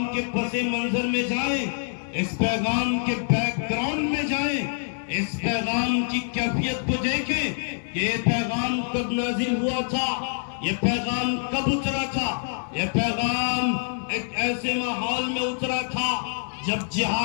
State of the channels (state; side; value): silent; right; 61 dB below the other